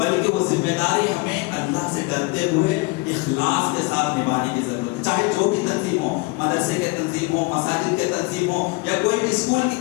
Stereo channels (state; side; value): quieter; right; 24.8 dB